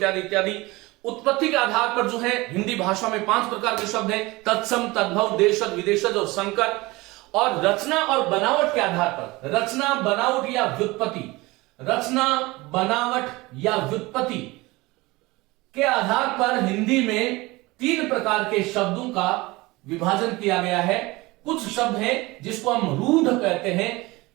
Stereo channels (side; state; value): left; quieter; 21.9 dB